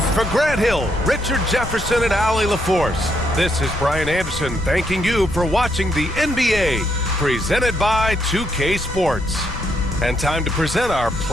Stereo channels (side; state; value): left; noise; rumble, 11 dB below the sound